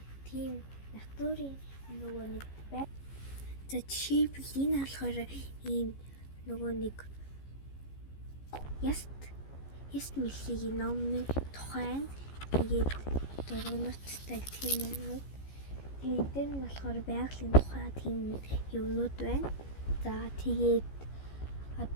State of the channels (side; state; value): right; late; 15 ms